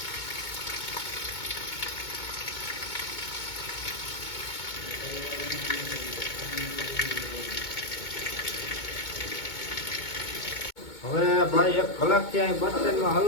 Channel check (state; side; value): late; right; 2.2 ms